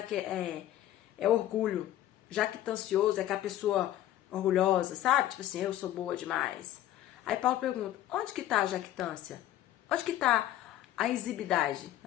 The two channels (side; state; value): right; quieter; 13.1 dB